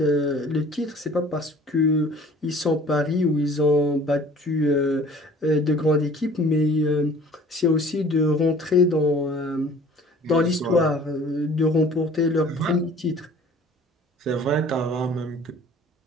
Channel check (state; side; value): normal; both; correlation 0.49